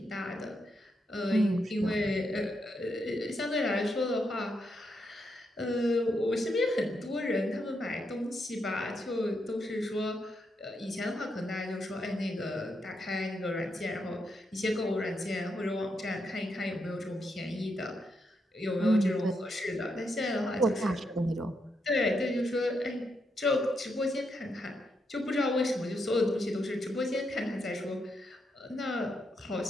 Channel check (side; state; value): both; normal; correlation 0.81